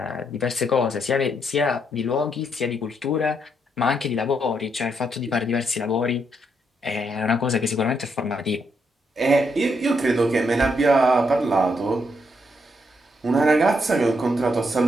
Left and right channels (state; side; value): normal; both; correlation 0.77